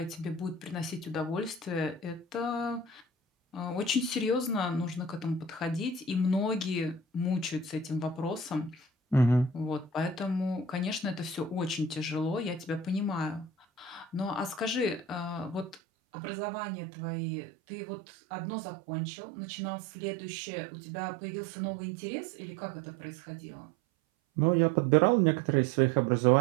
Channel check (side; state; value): left; drops out; at 15.8 s